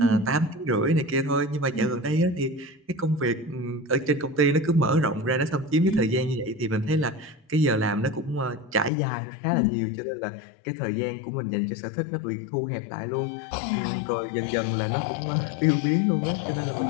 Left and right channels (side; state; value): right; drops out; at 8.9 s